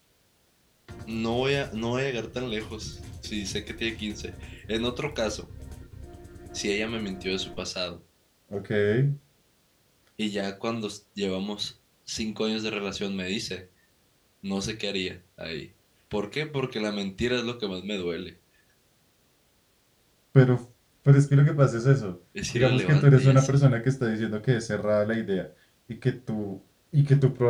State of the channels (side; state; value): both; identical; correlation 1.00